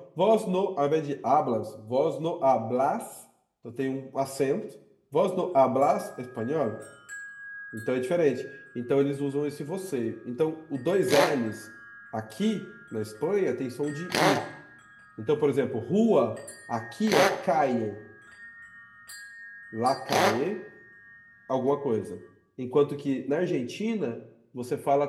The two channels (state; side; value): identical; both; correlation 1.00